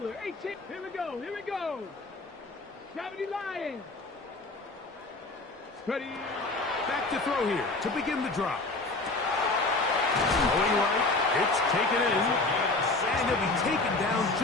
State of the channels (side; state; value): right; quieter; 3.2 dB